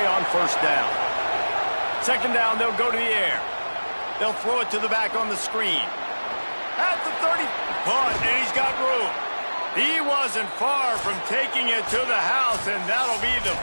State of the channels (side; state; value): both; inverted; correlation -1.00